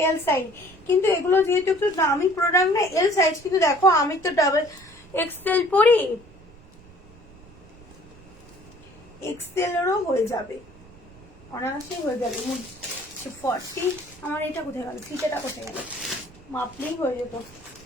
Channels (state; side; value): noise; right; rumble, 23 dB below the sound